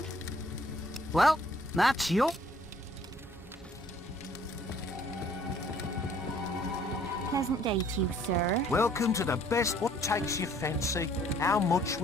Well, that's your... Pleasant day to you, sir. Welcome to the best. What takes your fancy? How much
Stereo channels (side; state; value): both; normal; correlation 0.59